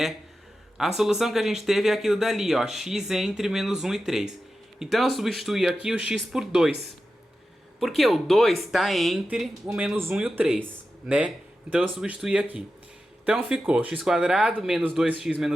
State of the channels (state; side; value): normal; both; correlation 0.92